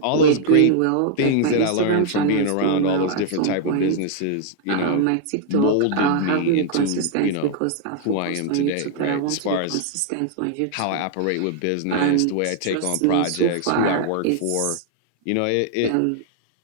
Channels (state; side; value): different; both; correlation 0.00